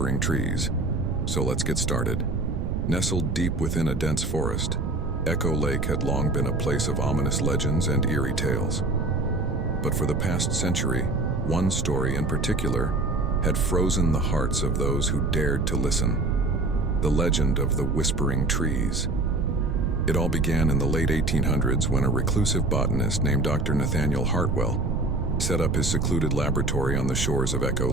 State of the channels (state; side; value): noise; right; rumble, 2 dB below the sound